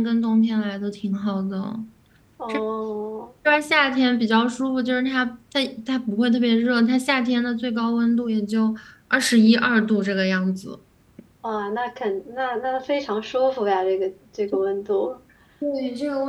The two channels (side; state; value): both; identical; correlation 1.00